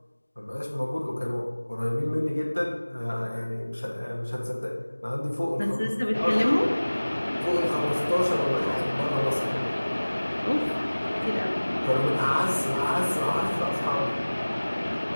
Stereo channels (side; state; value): both; inverted; correlation -1.00